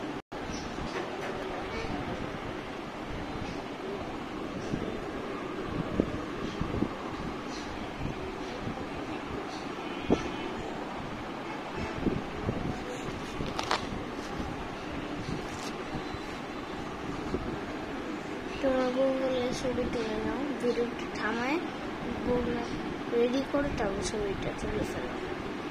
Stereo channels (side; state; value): both; identical; correlation 1.00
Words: তোমরা গুগলে ছবি তুলে নাও, ভিডিওটা থামায় গুগলে রেডি করে তারপর ছবিটা তুলে ফেলো।